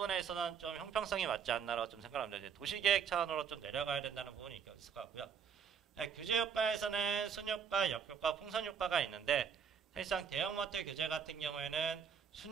좀 형평성이 맞지 않나라고 좀 생각합니다. 이제 도시계획 차원으로 좀 내려가야 된다는 부분이 있을 것 같고요. 규제 효과에서는 순효과, 역효과, 풍선효과가 있는데 사실상 대형마트 규제 같은 경우에는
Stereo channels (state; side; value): quieter; left; 7.1 dB